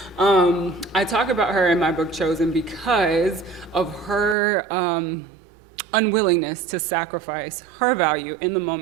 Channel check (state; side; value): drops out; left; at 4.4 s